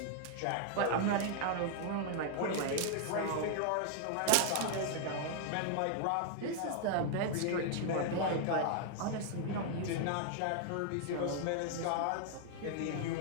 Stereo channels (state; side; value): different; both; correlation 0.00